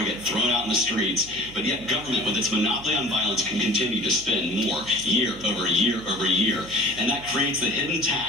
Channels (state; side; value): noise; right; hum, 18 dB below the sound